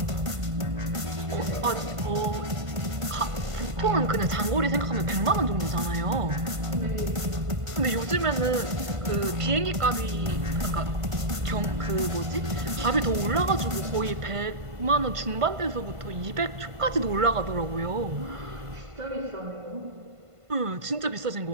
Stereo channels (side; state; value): left; late; 1.5 ms